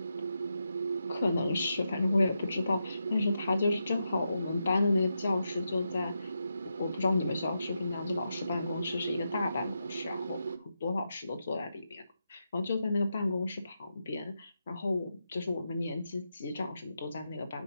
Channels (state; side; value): inverted; both; correlation -0.86